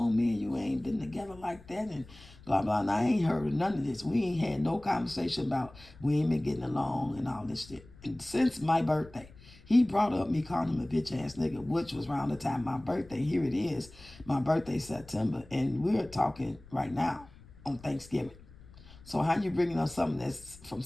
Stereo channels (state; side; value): noise; left; rumble, 22 dB below the sound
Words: Me and you ain't been together like that. And blah, blah. And I ain't heard none of this. We ain't had no conversation about we ain't been getting along and all this shit. And since my birthday, he brought up me calling him a bitch ass nigga, which was around the time of my birthday. Here it is. My birthday September. And we're talking right now on Thanksgiving. So how you bringing up something that's from